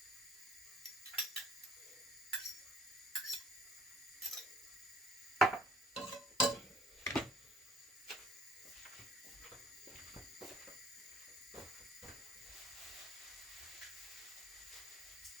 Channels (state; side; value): normal; both; correlation 0.56